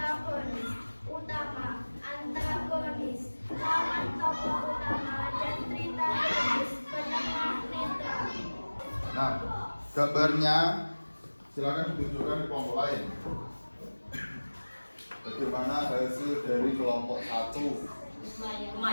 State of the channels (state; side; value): inverted; both; correlation -1.00